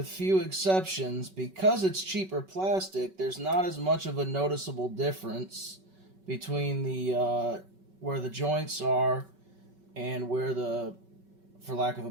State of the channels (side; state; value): left; late; 5.3 ms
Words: few exceptions, because it's cheaper plastic, there's not as much of a noticeable difference between the where the joints are and where the, for lack of a